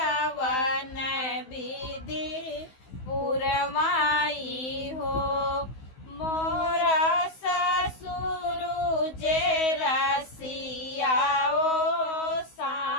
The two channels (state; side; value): late; right; 16 ms